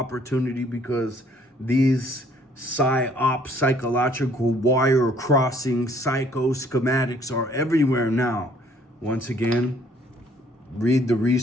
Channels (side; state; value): both; normal; correlation 0.61